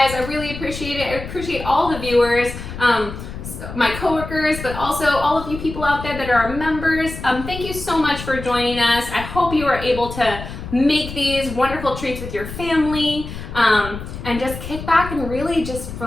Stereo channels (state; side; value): noise; left; rumble, 10 dB below the sound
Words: I really appreciate it. I appreciate all the viewers, my coworkers, but also all of you people out there that are our members. Thank you so much for joining us. I hope you are able to make these wonderful treats with your family and just kick back and really just